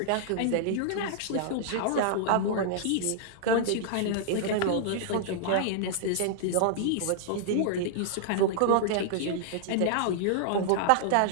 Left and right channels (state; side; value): different; both; correlation -0.01